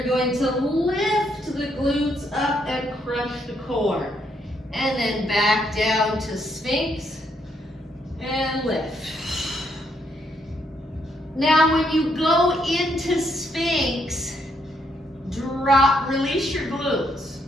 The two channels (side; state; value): both; normal; correlation 0.74